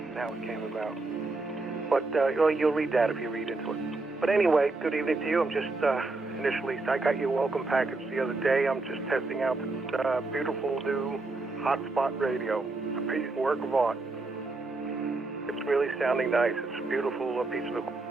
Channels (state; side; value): quieter; left; 3.3 dB